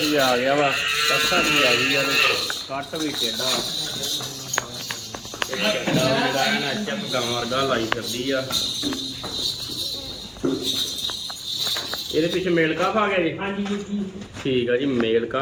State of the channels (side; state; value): both; identical; correlation 1.00